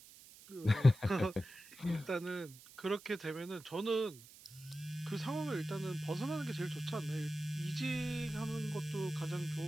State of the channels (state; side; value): noise; right; hiss, 20 dB below the sound